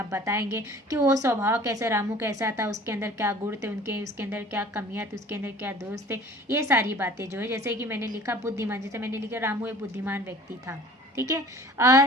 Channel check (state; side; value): normal; both; correlation 0.47